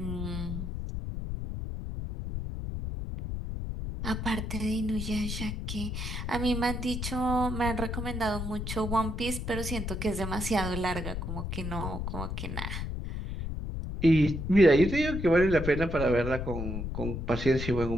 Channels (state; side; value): noise; left; rumble, 4 dB below the sound